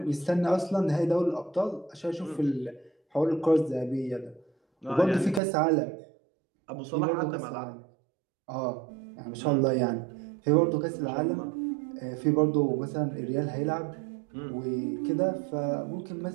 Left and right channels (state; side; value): drops out; left; at 5.4 s